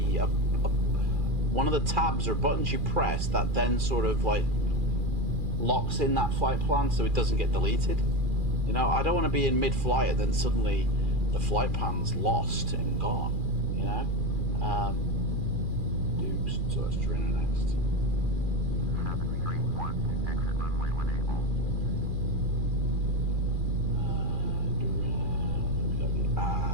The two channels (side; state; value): left; late; 2.4 ms